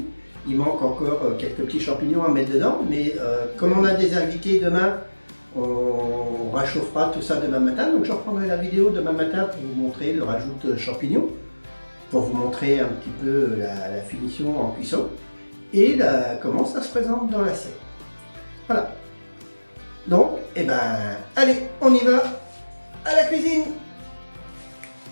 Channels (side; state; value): both; inverted; correlation -1.00